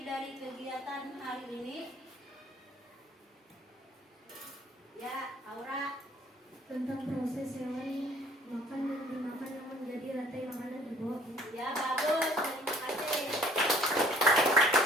dari kegiatan hari ini? Ya, Aura. Tentang proses hewan makan dan dimakan yang menjadi rantai makanan, Ibu. Ya, bagus. Terima kasih.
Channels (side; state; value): both; normal; correlation 0.56